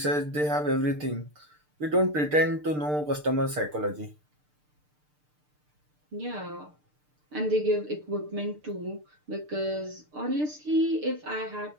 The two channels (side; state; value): left; late; 6.7 ms